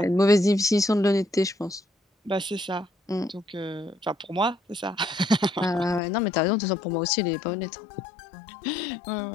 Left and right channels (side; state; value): right; drops out; at 6.0 s